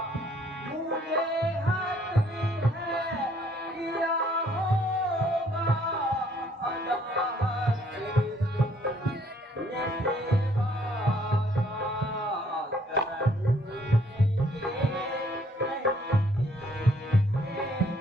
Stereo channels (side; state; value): both; normal; correlation 0.64